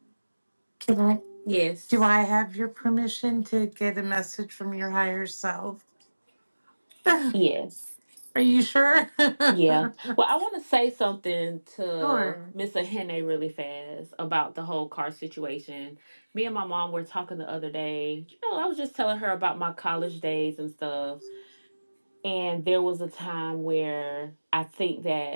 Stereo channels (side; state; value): both; inverted; correlation -1.00